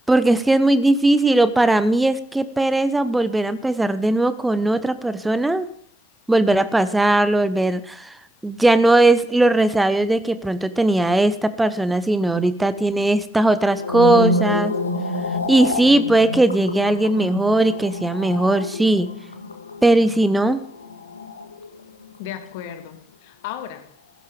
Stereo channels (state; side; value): normal; both; correlation 0.84